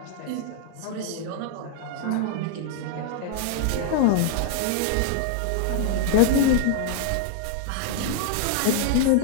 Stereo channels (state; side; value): different; both; correlation 0.00